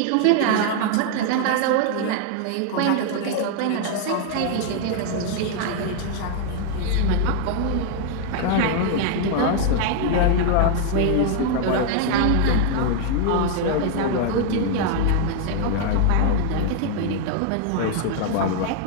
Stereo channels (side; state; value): both; different; correlation 0.00